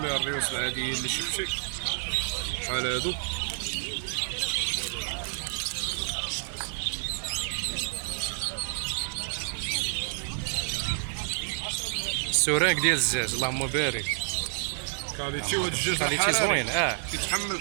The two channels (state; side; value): silent; left; digital silence